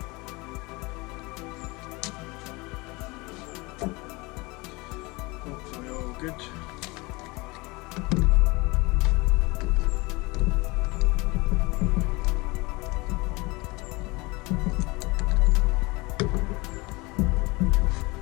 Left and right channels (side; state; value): right; quieter; 24.7 dB